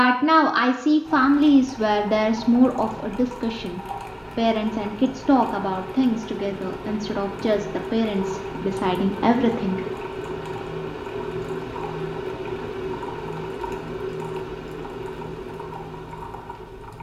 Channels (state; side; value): identical; both; correlation 1.00